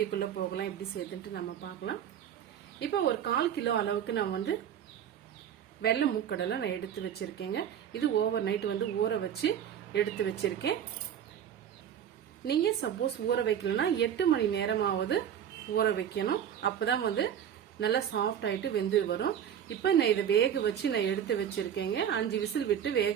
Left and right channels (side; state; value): left; quieter; 9.3 dB